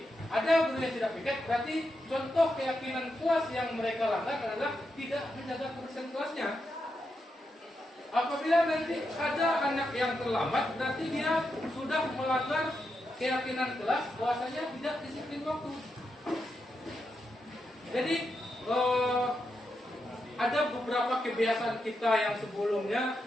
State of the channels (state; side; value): normal; both; correlation 0.85